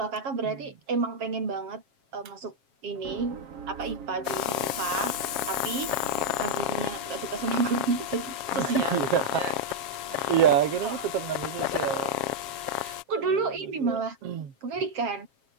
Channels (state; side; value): late; left; 7.4 ms